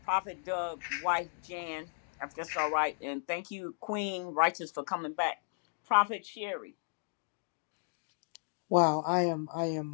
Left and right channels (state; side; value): silent; right; digital silence